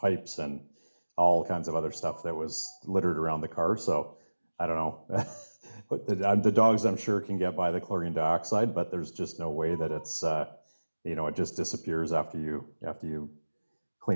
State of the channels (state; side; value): inverted; both; correlation -1.00